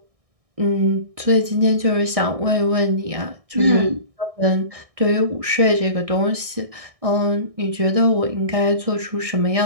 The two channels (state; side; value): late; left; 1.6 ms